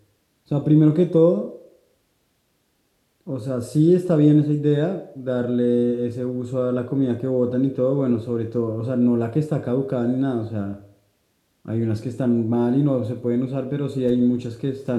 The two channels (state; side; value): identical; both; correlation 1.00